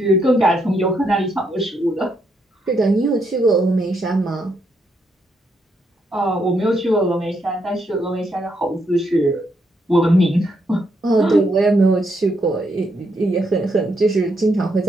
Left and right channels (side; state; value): both; normal; correlation 0.77